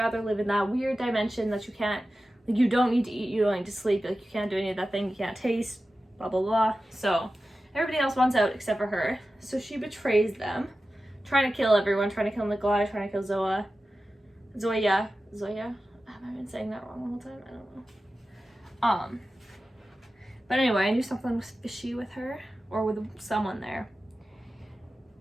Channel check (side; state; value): both; normal; correlation 0.94